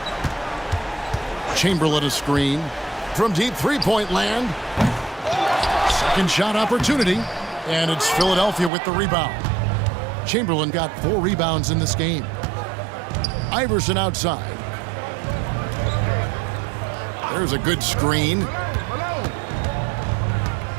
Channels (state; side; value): drops out; left; at 8.7 s